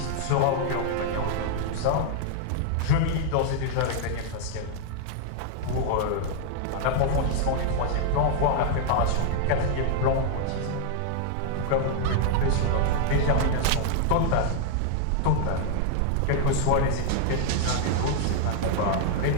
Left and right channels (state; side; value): different; both; correlation 0.00